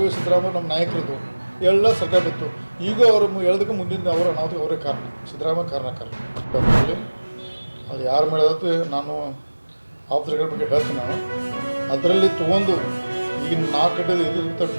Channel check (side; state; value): both; inverted; correlation -1.00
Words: ಸಿದ್ದರಾಮಯ್ಯ ನಮ್ಮ ನಾಯಕರದ್ದು ಎಲ್ಲ ಸರ್ಕಾರ ಬಿತ್ತು. ಈಗ ಅವರು ಹೇಳೋದಕ್ಕೆ ಮುಂದಿನ ಅವರ ಅನಾಹುತಕ್ಕೆ ಅವರೇ ಕಾರಣ, ಸಿದ್ದರಾಮಯ್ಯ ಕಾರಣಕಾರ. ಅದು ಯಾರು ಮಾಡೋದಕ್ಕೆ ನಾನು ಆಫ್ಸರ್ಗಳ ಬಗ್ಗೆ ಹೇಳ್ತೀನಿ. ನಾನು ಅದರಲ್ಲಿ ತೊಗೊಂಡು ಈಗಿನ 4 ಗಂಟೆ ಇದು